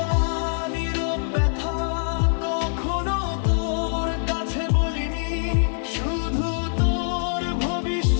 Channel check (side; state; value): right; silent; digital silence